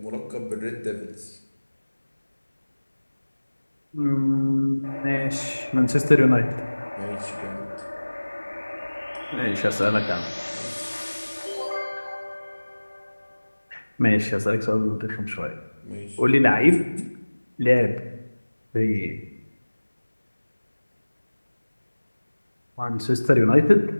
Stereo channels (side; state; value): both; inverted; correlation -1.00